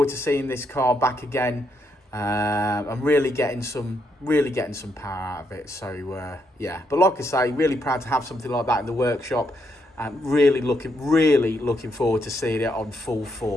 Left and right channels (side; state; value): both; normal; correlation 0.77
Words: to seeing this car back again I'm really getting some power out of it. So yeah, but like I say, really proud to have something like that in the workshop, and really looking forward to seeing it on full